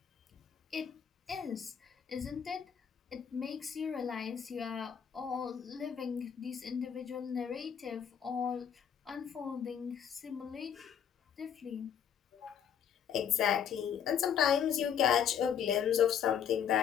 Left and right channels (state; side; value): quieter; right; 8.4 dB